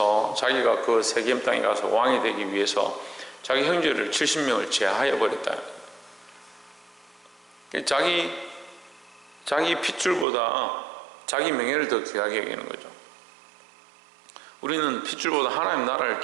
자기가 그 세겜 땅에 가서 왕이 되기 위해서 자기 형제를 70명을 제하해 버렸다. 자기 핏줄보다 자기 명예를 더 귀하게 여기는 거죠. 우리는 핏줄보다 하나님 나라를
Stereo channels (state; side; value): drops out; left; at 10.2 s